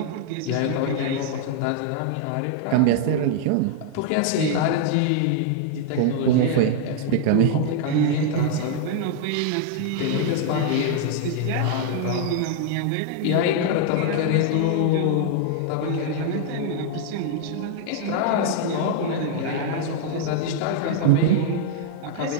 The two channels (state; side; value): different; both; correlation 0.00